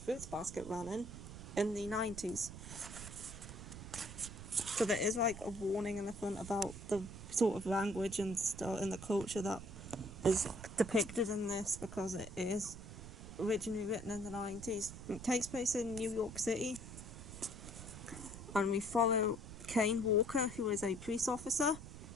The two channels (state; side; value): noise; right; rumble, 12 dB below the sound